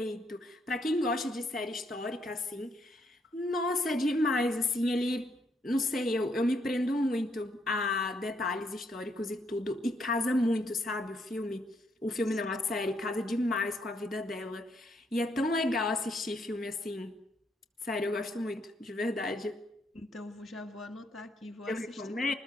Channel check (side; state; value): both; normal; correlation 0.74